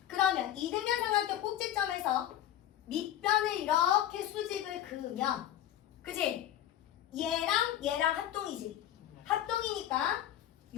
그러면 이등변 삼각형 꼭지점에서 밑변을 이렇게 수직을 그으면 그지? 얘랑 합동이지. 합동이니까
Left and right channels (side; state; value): right; quieter; 11.7 dB